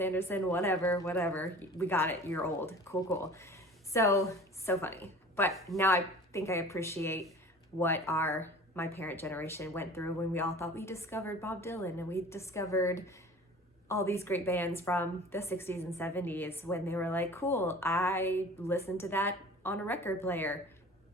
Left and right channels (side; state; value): both; normal; correlation 0.43